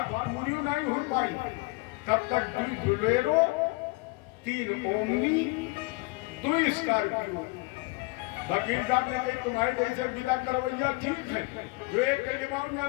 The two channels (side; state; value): right; quieter; 25.0 dB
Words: पूरी नहीं हो पाई। तब तक 2 बुलेरो, 3 ओमनी, 2 स्कॉर्पियो। वकील साहब ने कही तुम्हारे जैसे विदा करवैया ठीक है, जो एक के दिमाग में